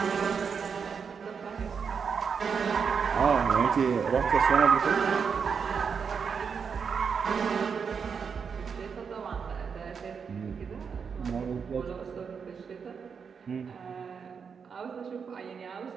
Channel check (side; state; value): left; quieter; 6.2 dB